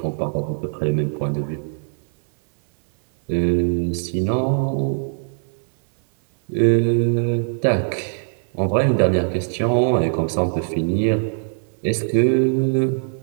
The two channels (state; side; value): silent; left; 64 dB below the other